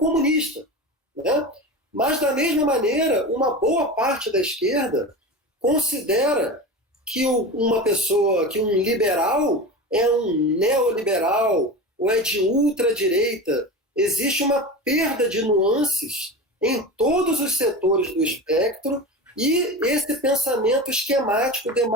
Né? Mas, da mesma maneira, uma boa parte da esquerda considera que um liberal é um neoliberal ou é de ultradireita. Existe uma perda de nuances em todos os setores do espectro e esse pensamento esquemático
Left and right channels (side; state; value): both; normal; correlation 0.27